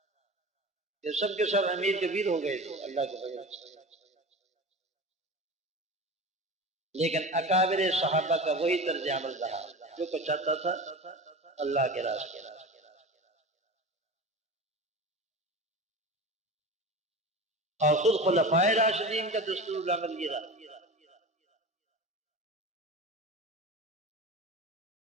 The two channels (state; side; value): normal; both; correlation 0.31